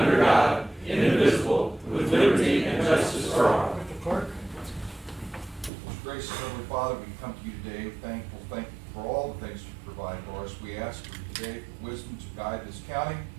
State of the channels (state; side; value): drops out; left; at 5.7 s